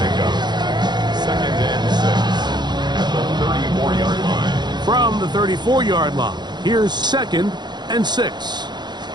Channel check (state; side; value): late; left; 0.21 ms